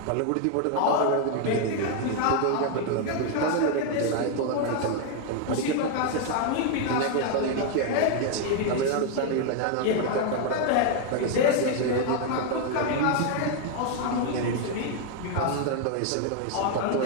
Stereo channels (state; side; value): different; both; correlation 0.01